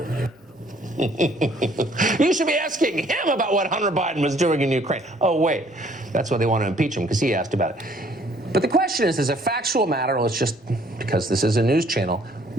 You should be asking him about what Hunter Biden was doing in Ukraine. Oh, wait. That's why they want to impeach him, because he asked about it. But the question is, as a factual matter, let's just, because this is a news channel,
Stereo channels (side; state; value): both; normal; correlation 0.61